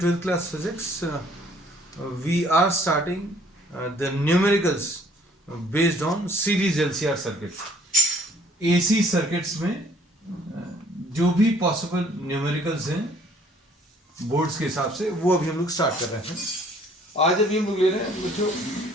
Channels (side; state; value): both; normal; correlation 0.58